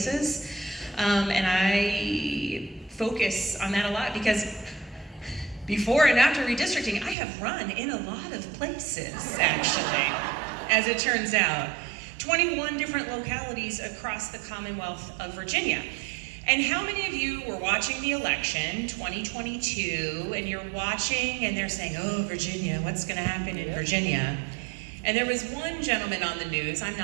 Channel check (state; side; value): drops out; left; at 7.2 s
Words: And I focus on that a lot because before and after redistricting, I have run in a lot of places, actually, as it turns out. 21 different localities across the Commonwealth of Virginia. And how many of you were watching the election, 2022, and you're watching and they're saying, oh, Virginia, what's gonna happen in Virginia? And there was one gentleman on the news, I'm